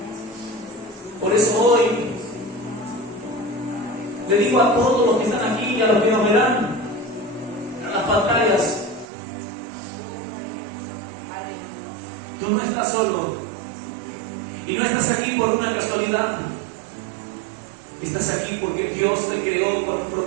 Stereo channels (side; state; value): left; drops out; at 9.1 s